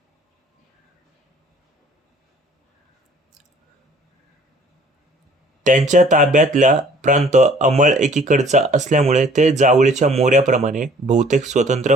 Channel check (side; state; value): both; normal; correlation 0.54